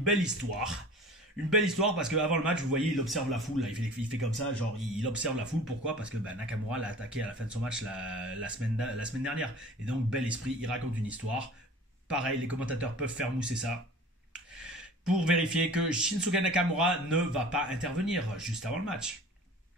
histoire. Une belle histoire parce qu'avant le match, vous voyez, il observe la foule. Là. Il fait comme ça, genre il observe la foule. Pourquoi? Parce que Nakamura l'a attaqué à la fin de son match la semaine dernière. Et donc, bel esprit, il raconte une histoire. Pareil, les commentateurs peuvent faire mousser ça pour vérifier que Shinsuke Nakamura ne va pas intervenir juste avant le match.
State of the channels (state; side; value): normal; both; correlation 0.42